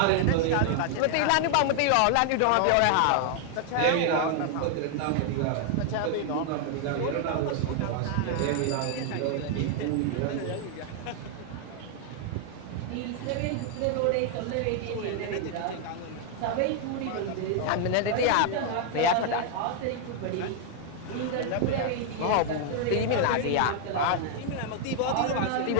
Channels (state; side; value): different; both; correlation 0.00